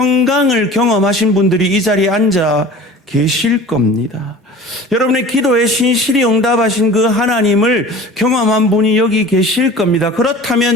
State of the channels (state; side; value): normal; both; correlation 0.41